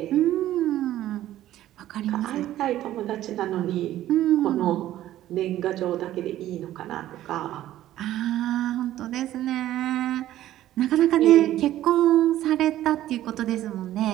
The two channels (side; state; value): left; quieter; 13.5 dB